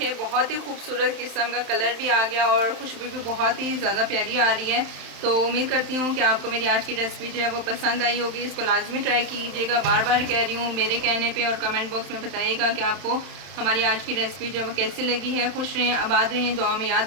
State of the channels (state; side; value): late; left; 31 ms